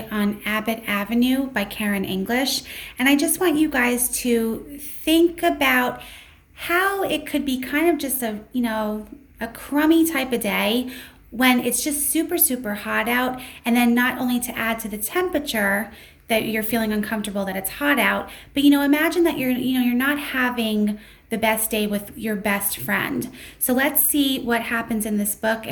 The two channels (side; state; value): both; identical; correlation 1.00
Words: on Abbott Avenue by Karen English. And I just want you guys to think about how it could be kind of just a crummy type of day when it's just super, super hot out. And then not only to add to the temperature that you're feeling uncomfortable that it's hot out, but imagine that you're not having the best day with your best friend. So let's see what happens in this book